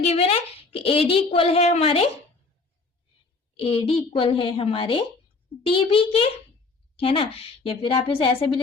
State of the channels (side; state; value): right; quieter; 3.8 dB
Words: गिवन है कि ए डी इक्वल है हमारे, ए डी इक्वल है हमारे डी बी के, है ना। या फिर आप इसे ऐसे भी